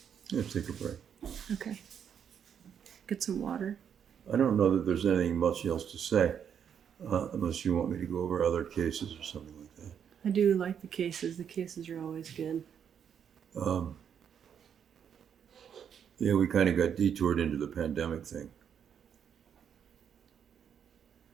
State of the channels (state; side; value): quieter; left; 8.1 dB